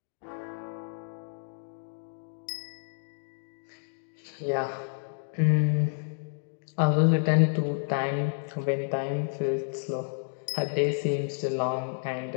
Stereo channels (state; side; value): silent; right; digital silence